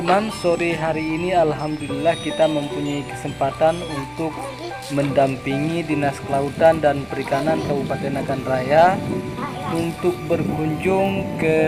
sore hari ini alhamdulillah kita mempunyai kesempatan untuk mendampingi Dinas Kelautan dan Perikanan Kabupaten Nagan Raya untuk berkunjung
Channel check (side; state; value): both; identical; correlation 1.00